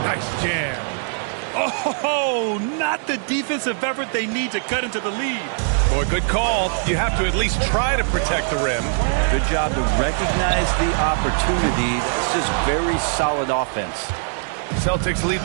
nice jam. Oh, not the defensive effort they need to cut into the lead. Boy, good call. You have to at least try to protect the rim. Good job to recognize the opportunity. That's just very solid offense. Celtics lead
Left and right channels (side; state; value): left; silent; 63 dB below the other